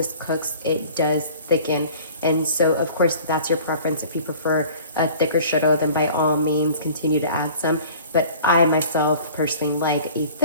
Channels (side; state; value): both; inverted; correlation -0.46